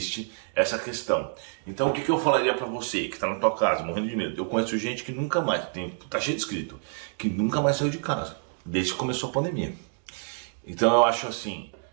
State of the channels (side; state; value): left; silent; 60 dB below the other